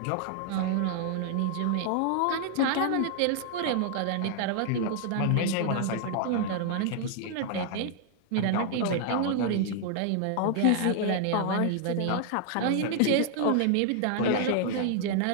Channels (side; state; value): both; different; correlation 0.00